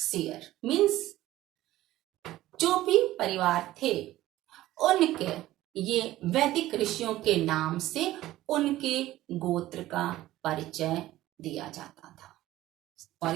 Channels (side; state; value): left; quieter; 15.5 dB